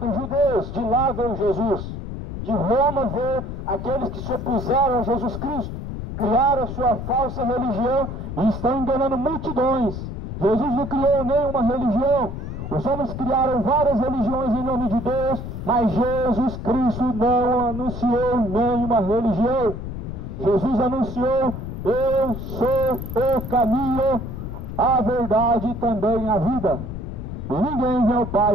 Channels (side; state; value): left; noise; rumble, 7 dB below the sound